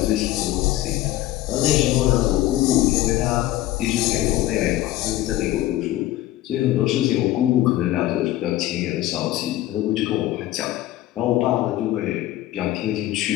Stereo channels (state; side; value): quieter; right; 15.2 dB